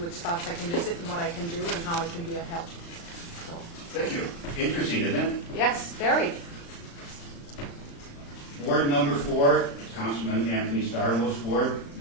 spots I can visit and what I can do and how I can be of help. So, Thank you. Interesting, isn't it? yes, very. Ward number 4, Councilman Anthony Starlow's ward,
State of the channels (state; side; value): late; right; 35 ms